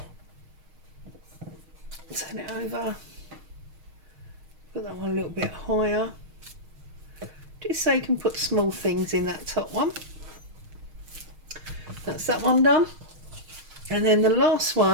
turn it over, put that one a little bit higher, just so you can put small things in that top one. That's that one done. And then the last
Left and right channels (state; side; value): late; left; 6.4 ms